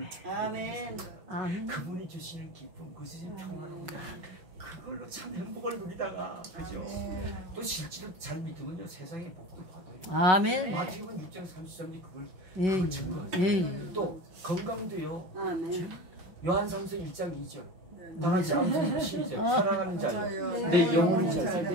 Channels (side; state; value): left; late; 5.9 ms